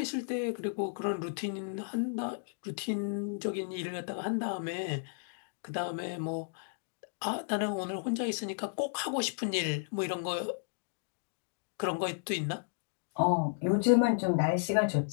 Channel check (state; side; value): silent; right; digital silence